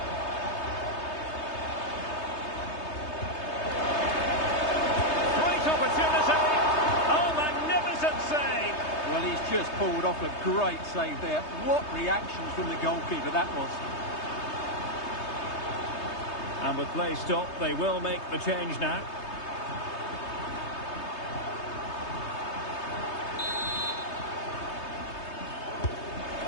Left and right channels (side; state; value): right; late; 3.3 ms